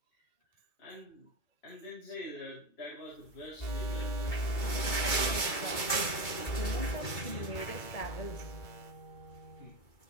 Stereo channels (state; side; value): late; right; 2.3 ms